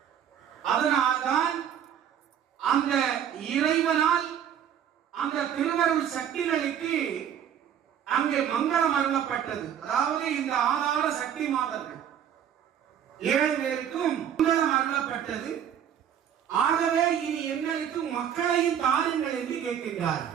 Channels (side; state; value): left; quieter; 9.3 dB